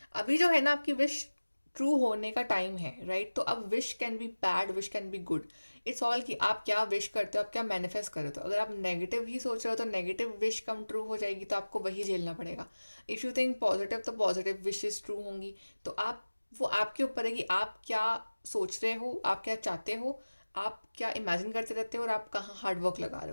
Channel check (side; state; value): both; inverted; correlation -1.00